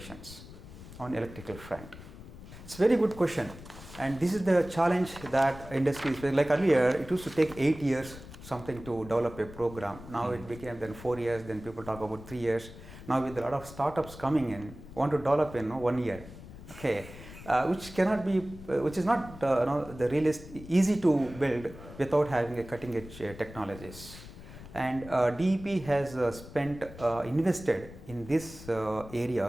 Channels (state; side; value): noise; left; rumble, 16 dB below the sound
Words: on electrical front. It's a very good question, and this is the challenge that industry is. Like earlier, it used to take 8 years something to develop a program. Now it became then 4 years. Then people talk about 3 years. Now with a lot of startups coming in, want to develop in 1 year. Okay, which cannot be, which is not the easy to build without having a cutting edge technologies. And DEP has invested in these